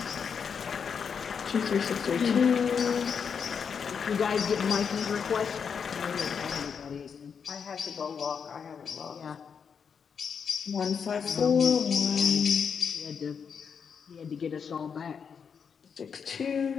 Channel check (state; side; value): quieter; right; 6.6 dB